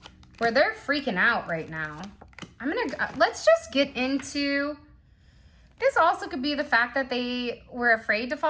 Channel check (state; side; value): identical; both; correlation 1.00